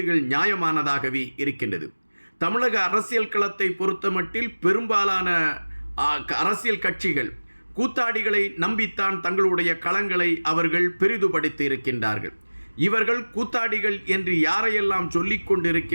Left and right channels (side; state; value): both; inverted; correlation -1.00